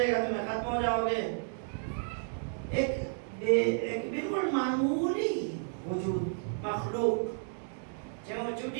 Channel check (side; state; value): left; silent; digital silence